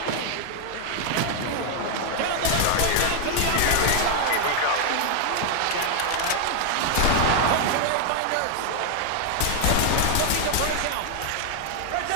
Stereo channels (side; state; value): both; different; correlation 0.00